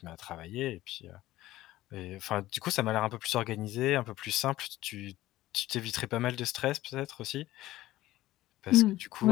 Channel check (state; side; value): quieter; right; 15.9 dB